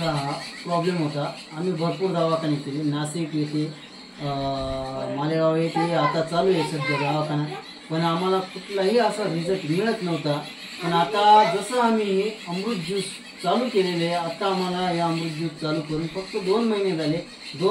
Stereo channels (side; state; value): both; identical; correlation 1.00